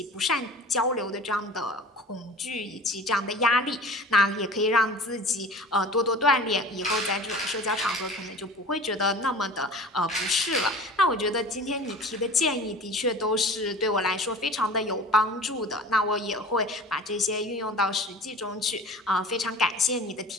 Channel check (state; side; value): normal; both; correlation 0.40